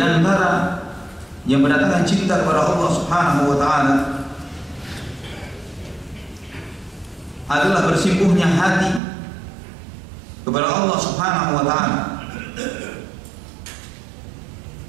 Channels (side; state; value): left; drops out; at 9.0 s